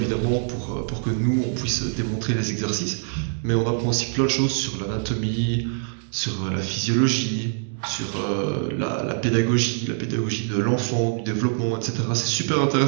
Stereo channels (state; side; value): silent; left; digital silence